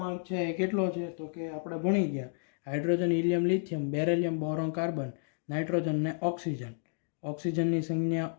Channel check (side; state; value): right; silent; digital silence